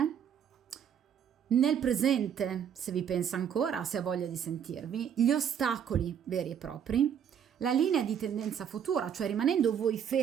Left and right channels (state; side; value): quieter; left; 8.5 dB